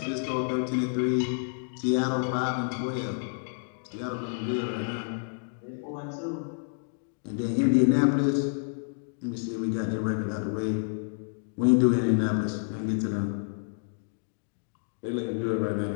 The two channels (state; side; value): silent; right; digital silence